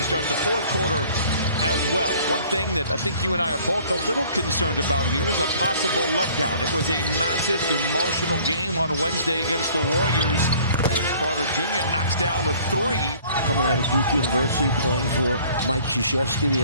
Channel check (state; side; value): inverted; both; correlation -0.54